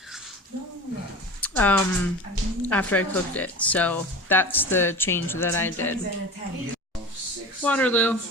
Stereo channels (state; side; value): normal; both; correlation 0.34